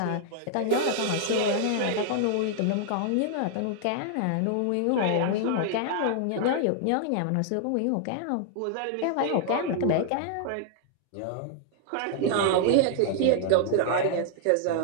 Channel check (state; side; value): different; both; correlation -0.01